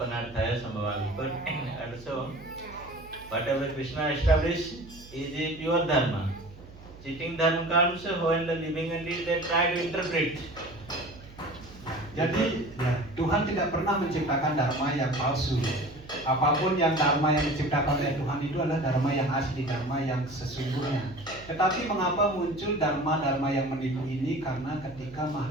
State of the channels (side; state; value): right; noise; hum, 19 dB below the sound